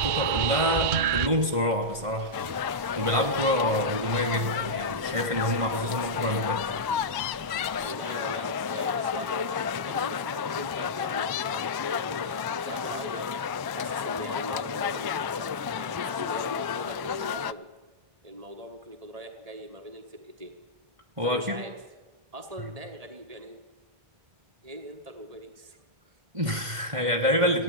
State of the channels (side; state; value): left; late; 1.1 ms